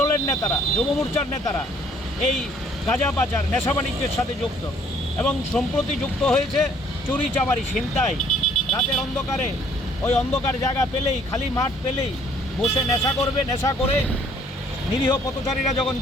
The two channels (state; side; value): normal; both; correlation 0.61